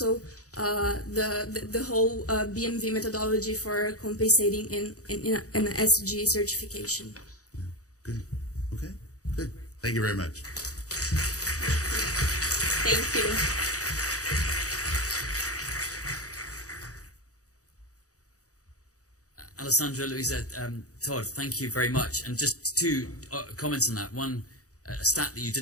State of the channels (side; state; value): right; late; 0.66 ms